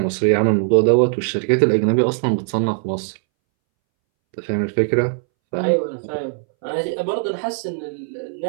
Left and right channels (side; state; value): left; silent; 64 dB below the other